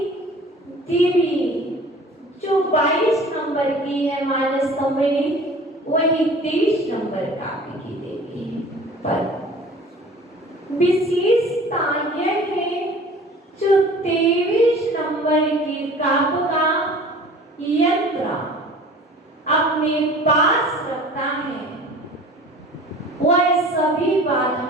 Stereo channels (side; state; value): both; normal; correlation 0.45